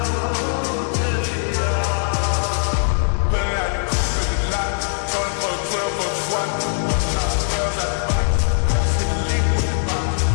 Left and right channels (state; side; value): silent; right; digital silence